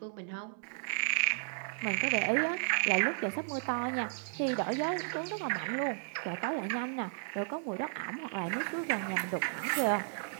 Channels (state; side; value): silent; left; digital silence